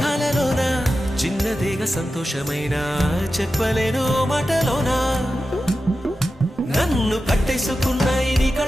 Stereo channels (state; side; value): normal; both; correlation 0.92